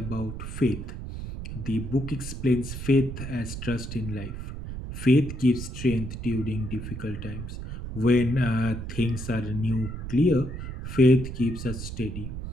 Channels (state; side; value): noise; right; rumble, 7 dB below the sound